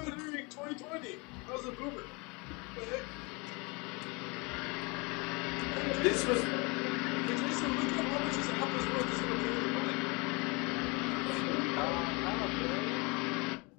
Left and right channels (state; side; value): quieter; right; 28.8 dB